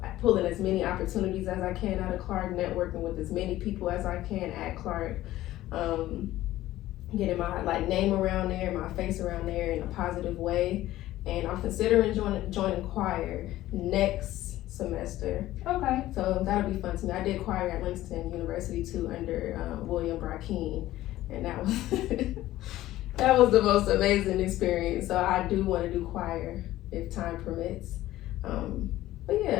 as many opportunities as I can out of Clark, networking with as many people as I can at Clark, getting my like name around there, my face around there in a positive way. And I'm considering joining choir next semester. Okay. So that'll be fun to me. I did choir at Langston University too under William Brackeen, and that was that was the most amazing experience. So I do want to do choir if time permits. But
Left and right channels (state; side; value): quieter; right; 15.2 dB